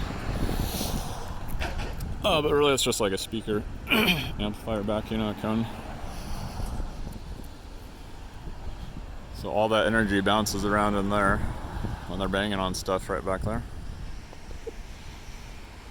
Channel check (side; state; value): both; identical; correlation 1.00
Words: But really it's just like a speaker amplifier back, you know, a cone. So all that energy bounces around in there when they're banging on stuff right back there.